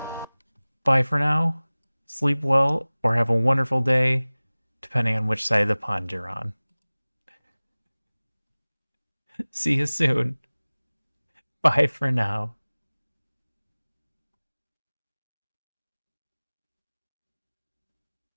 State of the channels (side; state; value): both; inverted; correlation -1.00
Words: Bye for now. Sleep well or have a wonderful day, depending on which side of the pond you're on. See you soon. Bye for now.